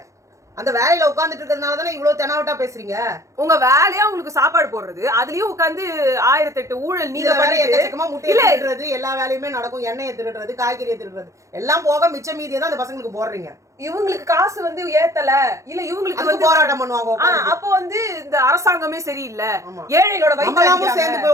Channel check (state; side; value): late; left; 0.15 ms